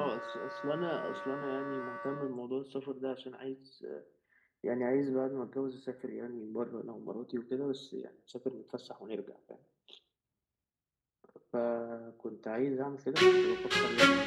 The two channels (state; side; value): identical; both; correlation 1.00